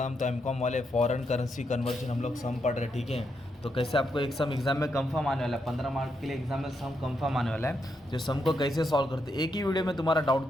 तो M Com वाले foreign currency conversion हम लोग सम पढ़ रहे, ठीक है। तो कैसे आपको एक सम एग्जाम में कंफर्म आने वाला है, 15 मार्क के लिए एग्जाम में सम कंफर्म आने वाला है। तो सम को कैसे सॉल्व करते एक ही वीडियो में तुम्हारा डाउट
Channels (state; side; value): normal; both; correlation 0.81